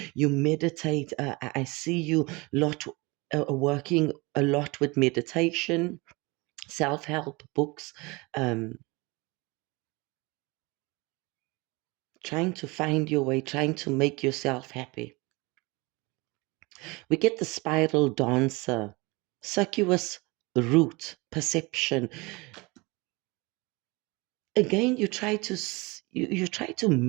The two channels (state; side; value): quieter; left; 25.2 dB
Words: You meditate. I see you lot working a lot with meditation, self-help books, trying to find your way, trying to make yourself happy. We get the spiral dancer, circuitous route, perception. Again, you try to